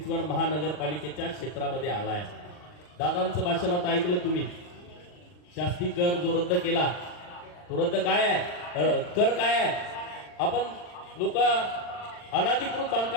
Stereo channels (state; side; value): late; right; 40 ms